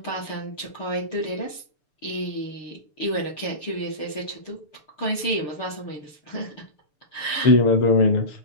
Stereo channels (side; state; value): right; late; 6.8 ms